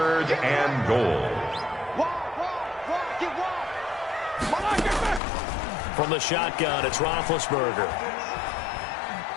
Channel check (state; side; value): drops out; right; at 5.2 s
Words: and goal. From the shotgun, it's Roethlisberger.